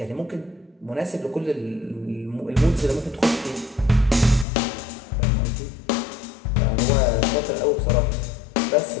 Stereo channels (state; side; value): drops out; right; at 4.5 s